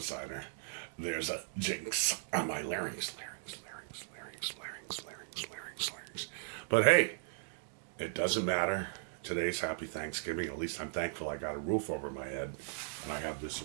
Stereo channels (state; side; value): silent; left; digital silence